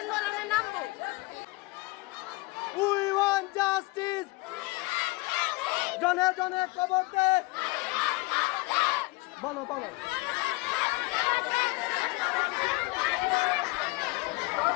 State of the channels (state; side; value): quieter; right; 23.9 dB